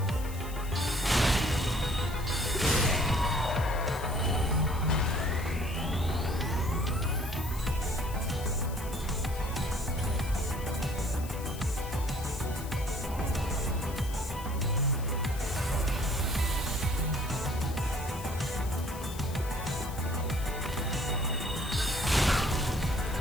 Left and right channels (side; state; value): left; noise; hiss, 15 dB below the sound